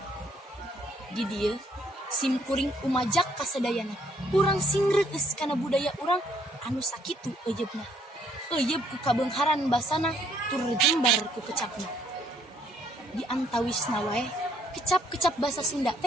di dieu simkuring umajak ka sadayana urang singreueus kana budaya urang anu sakitu euyeubna. Euyeub ku kabeungharan basana tur jembar ku kecapna. Di antawisna wae kecap-kecap basa Sunda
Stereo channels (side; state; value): both; normal; correlation 0.66